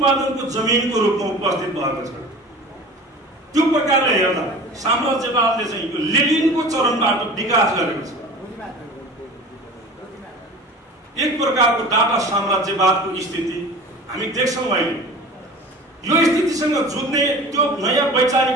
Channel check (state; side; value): normal; both; correlation 0.38